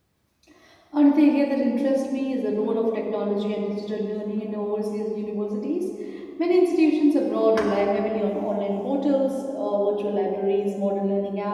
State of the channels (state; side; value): identical; both; correlation 1.00